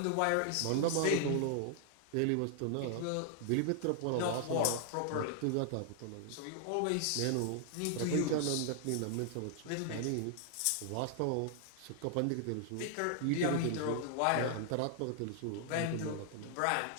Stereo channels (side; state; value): both; different; correlation 0.00